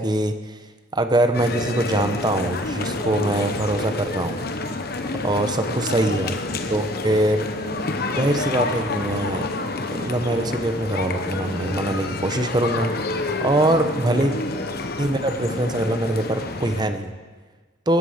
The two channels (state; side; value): normal; both; correlation 0.56